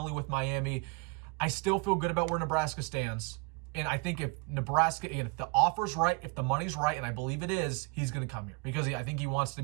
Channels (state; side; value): quieter; left; 29.1 dB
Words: with Miami. I still feel good about where Nebraska stands. And I think if Nebraska, again, if the offer's right, if the money's right, and I believe it is, he's going to come here because I think he wants